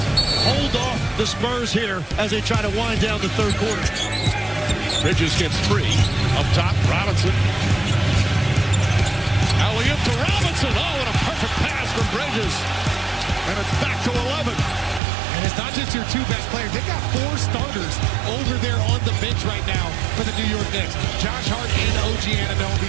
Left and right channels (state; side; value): drops out; left; at 15.0 s